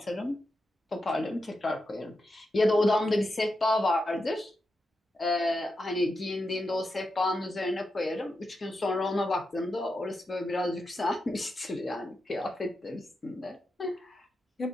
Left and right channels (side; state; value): both; normal; correlation 0.87